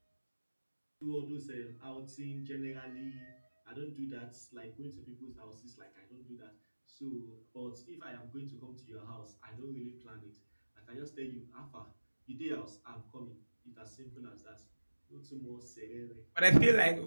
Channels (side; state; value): both; inverted; correlation -1.00